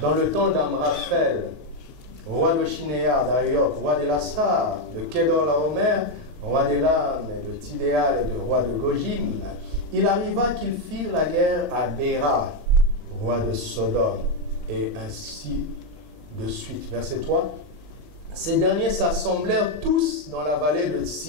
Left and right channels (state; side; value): late; left; 39 ms